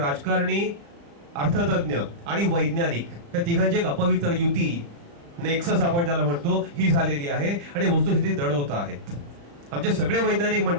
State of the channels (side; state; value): left; late; 35 ms